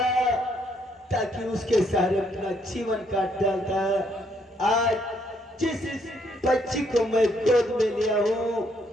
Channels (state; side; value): normal; both; correlation 0.71